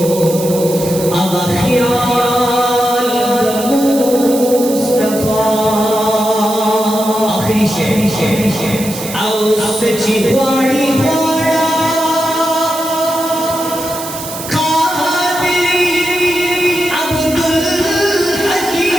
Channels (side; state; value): right; noise; hiss, 10 dB below the sound